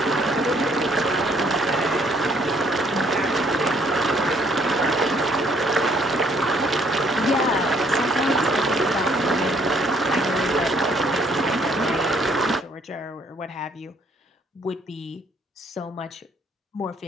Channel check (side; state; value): both; normal; correlation 0.64